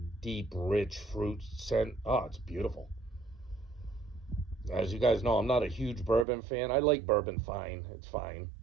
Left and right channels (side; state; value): left; drops out; at 6.2 s